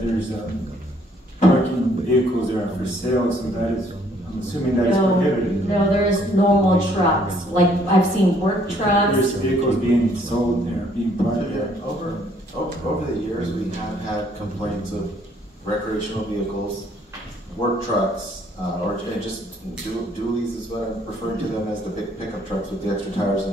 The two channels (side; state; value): both; normal; correlation 0.64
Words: there's parking vehicles that are for sale, so that is, I'm assuming that is prohibited. No, there's normal trucks. Like, I've seen work trucks. There's vehicles being sold there, being parked there. Over the years, we have had complaints of recreational vehicles, work trucks, or just dualies is what I'm referring to them as, the big pickup trucks with the extra tires